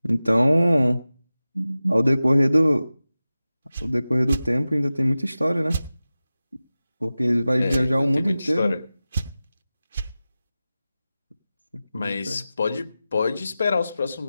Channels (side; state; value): both; inverted; correlation -0.95